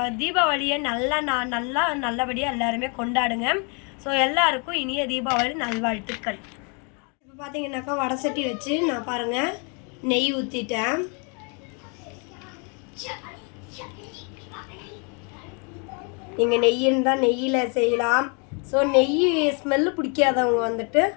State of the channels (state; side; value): quieter; right; 35.7 dB